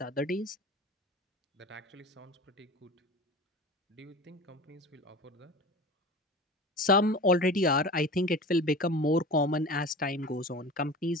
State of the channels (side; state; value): both; normal; correlation 0.34